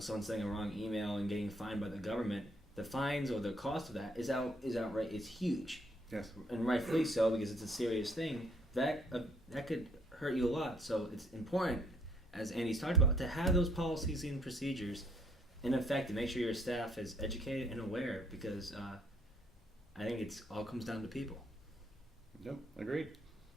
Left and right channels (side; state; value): both; normal; correlation 0.66